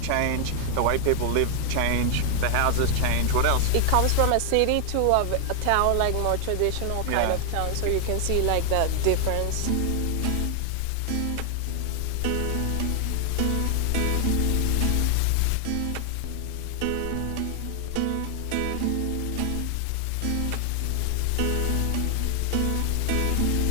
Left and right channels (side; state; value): both; different; correlation 0.00